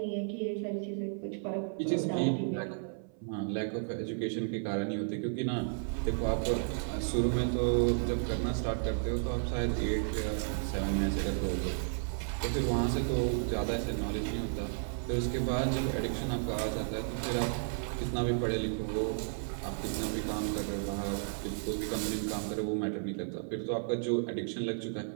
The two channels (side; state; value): left; silent; 56 dB below the other